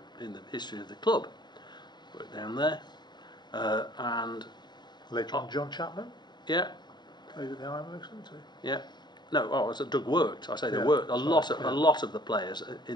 in the history of the club. Worked down there, and later on, John Chapman. Yeah. Played at the Ironworks, didn't he? Yeah. No, Doug worked. I say they worked. A lot of the players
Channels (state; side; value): late; right; 0.21 ms